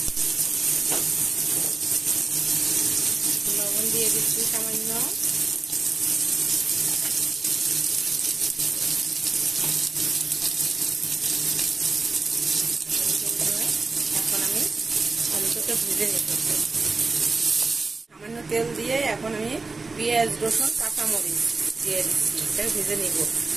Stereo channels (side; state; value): left; quieter; 3.9 dB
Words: লবণ দিয়ে দিচ্ছি সামান্য। এখন আমি আলুটাকে ভেজে নেব। সামান্য তেল দিয়ে এখন আমি পেঁয়াজ, রসুন, কাঁচামরিচ দিয়ে দিচ্ছি। এটাকে ভেজে নিব।